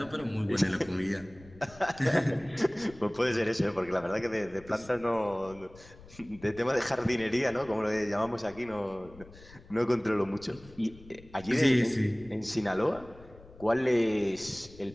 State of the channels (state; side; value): noise; left; rumble, 21 dB below the sound